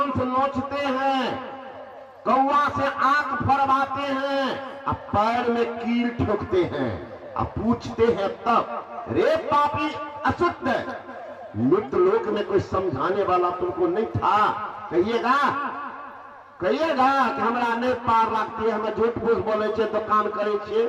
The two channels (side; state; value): both; identical; correlation 1.00